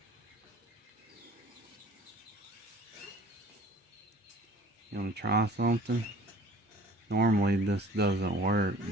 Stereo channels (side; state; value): both; normal; correlation 0.48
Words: You want to try something? Normally this doesn't work,